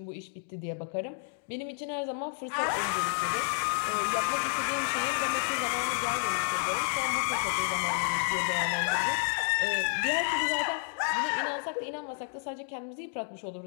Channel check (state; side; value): silent; right; digital silence